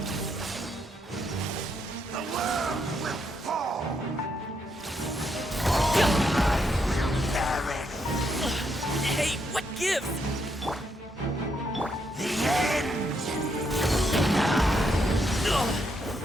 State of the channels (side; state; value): both; normal; correlation 0.77